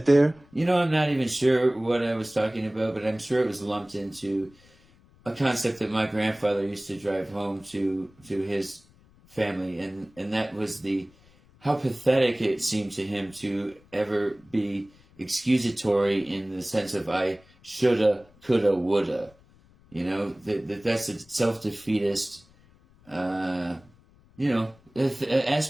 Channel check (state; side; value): noise; left; rumble, 29 dB below the sound